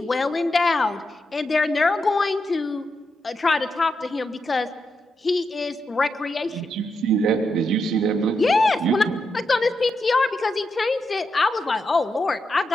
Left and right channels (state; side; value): normal; both; correlation 0.85